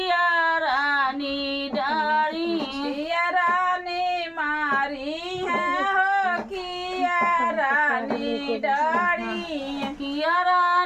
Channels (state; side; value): identical; both; correlation 1.00